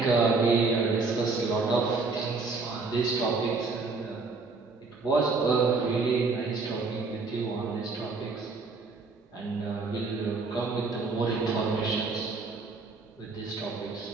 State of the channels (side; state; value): left; quieter; 4.0 dB